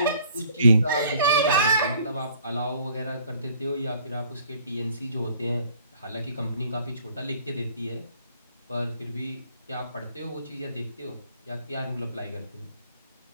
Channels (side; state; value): both; inverted; correlation -0.57